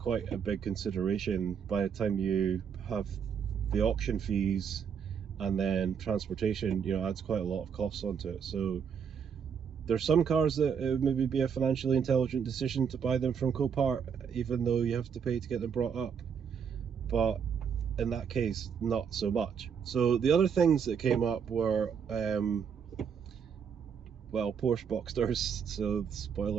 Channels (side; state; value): left; quieter; 7.1 dB